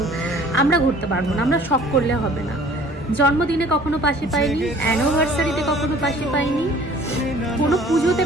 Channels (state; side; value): normal; both; correlation 0.51